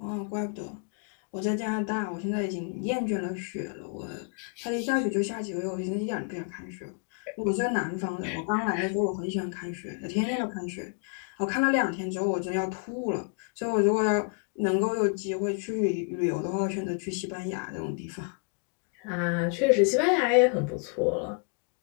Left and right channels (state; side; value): quieter; right; 39.4 dB